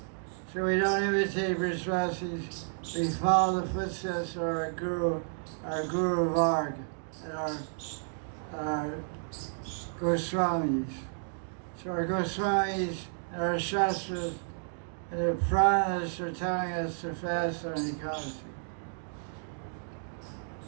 So we don't imitate Brajvasis, we follow the footsteps of our Guru Varg, and our Goswamis. So our Goswamis and our Shastras and the Puranas are telling us to fast on Ekadasi.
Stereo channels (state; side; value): silent; left; digital silence